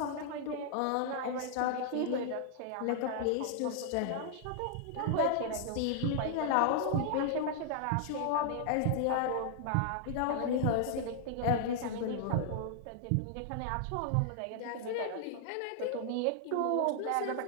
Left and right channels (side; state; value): both; different; correlation -0.01